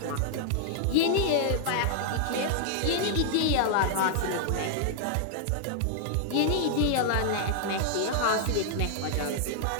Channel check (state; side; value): different; both; correlation -0.01